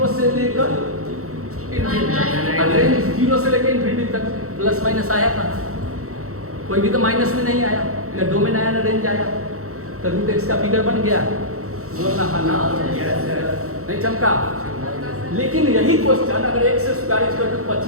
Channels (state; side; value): late; left; 0.64 ms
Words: से लेकर रेंज 0 से लेकर इन्फिनिटी तक प्लस माइनस आया था, कोई भी तो माइनस में नहीं आया, ना डोमेन आया ना रेंज आया, तो रूट एक्स का फिगर बन गया। बोलना हाँ ना नहीं चमका। लेकिन यही क्वेश्चन अगर x स्क्वायर इक्वल टू